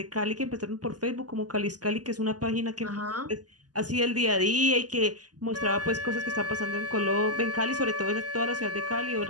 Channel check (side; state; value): left; late; 0.68 ms